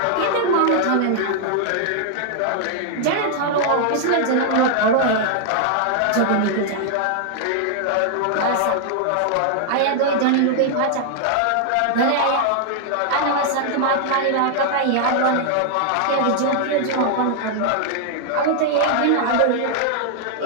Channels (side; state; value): both; different; correlation 0.00